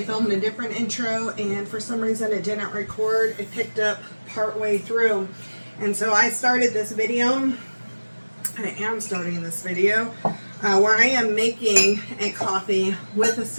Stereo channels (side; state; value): both; inverted; correlation -1.00